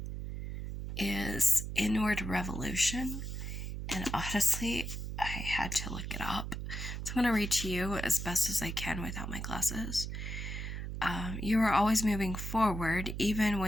is Inward Revolution. And honestly, I had to look it up. So I'm going to read to you as best as I can without my glasses. You are always moving forward, even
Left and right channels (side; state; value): right; noise; hum, 5 dB below the sound